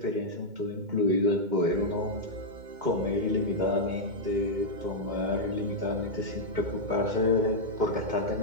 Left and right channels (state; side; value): late; left; 2.1 ms